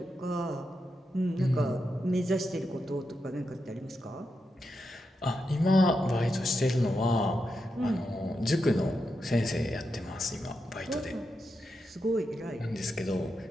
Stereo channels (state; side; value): normal; both; correlation 0.86